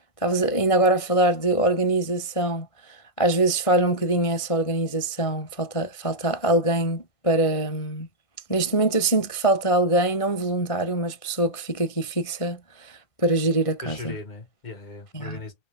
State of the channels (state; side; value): late; right; 1.6 ms